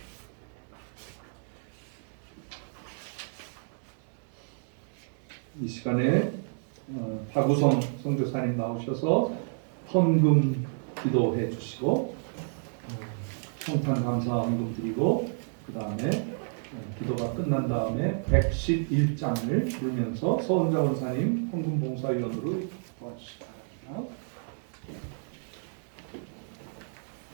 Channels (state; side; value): silent; left; digital silence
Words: 이 시간에 박우성 선교사님 나오셔서 헌금 기도해 주시고 성탄 감사 헌금 드리고 그 다음에 기도가 끝난 다음에 111장을 부르면서 서은자 원사님 헌금 봉사위원으로 도와주시다.